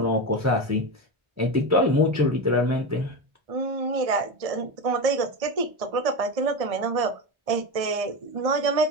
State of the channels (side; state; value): left; late; 1.6 ms